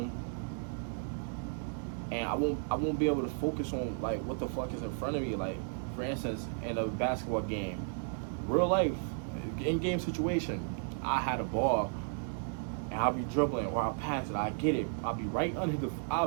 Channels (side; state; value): left; silent; digital silence